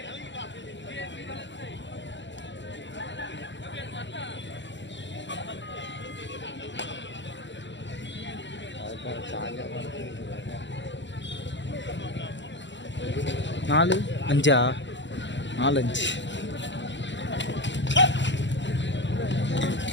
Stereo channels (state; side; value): late; right; 0.53 ms